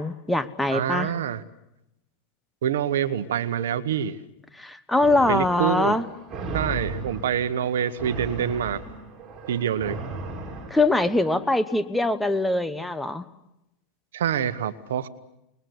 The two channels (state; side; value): normal; both; correlation 0.33